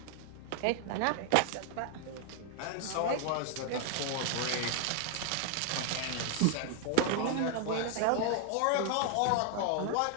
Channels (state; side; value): different; both; correlation 0.00